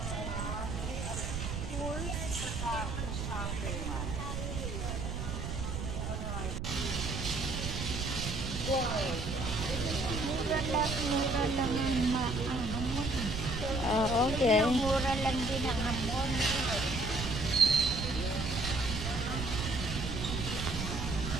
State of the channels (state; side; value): noise; right; rumble, 4 dB below the sound